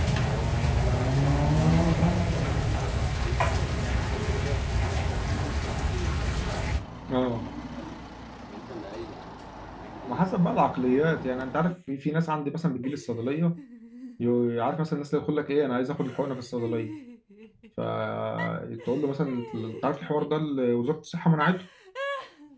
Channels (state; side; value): identical; both; correlation 1.00